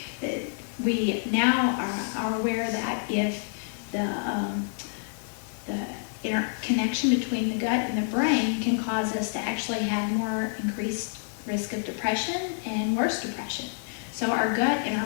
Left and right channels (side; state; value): right; silent; digital silence